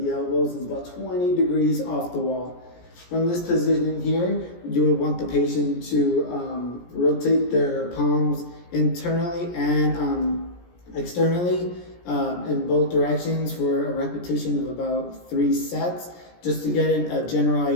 elbows is about 20 degrees off the wall. From this position here, you would want the patient to rotate their palms internally and externally in both directions for a repetition of about 3 sets, just to get a general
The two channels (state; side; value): late; right; 17 ms